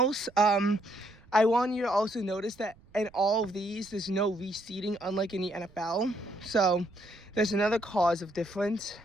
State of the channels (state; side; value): noise; right; rumble, 27 dB below the sound